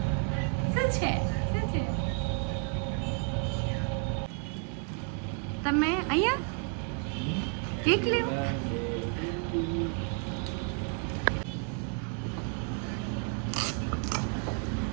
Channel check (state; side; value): quieter; left; 39.7 dB